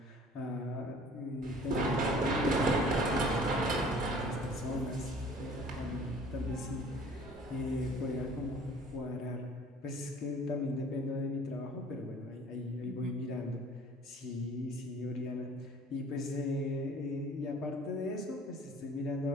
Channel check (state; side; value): normal; both; correlation 0.50